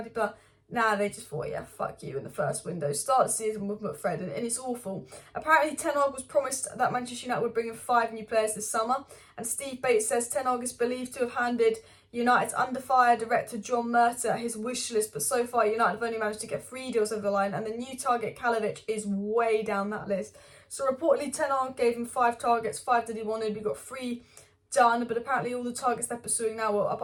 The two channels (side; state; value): both; identical; correlation 1.00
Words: blah. Nah, they just thought, yeah, fuck you in the first window. Start the season with McFred, and it's awful. Apparently, Ten Hag was promised that Manchester United would bring in 5 new players this summer, and Steve Bates says Ten Hag is believed to have handed United's under fire director John Murta his wish list, but so far United have only managed to get 3 deals over the line, and the new target Kalovic is way down that list. So reportedly Ten Hag gave him 5 targets, 5 that he wanted. We got 3 done, but apparently all the targets they're pursuing now,